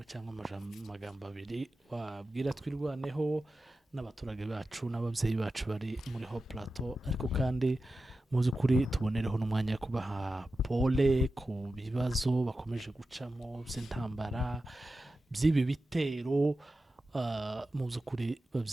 cyangwa amagambo abiri wabwira twirwaneho n'abaturage bacu n'ababyeyi bacu bari muri Hope Plateau ariko kandi muzi kuri tubonereho n'umwanya wo kubaha pole ku bibazo bakomeje gucamo by'intambara by'ibi bitero mu by'ukuri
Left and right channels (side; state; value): both; normal; correlation 0.93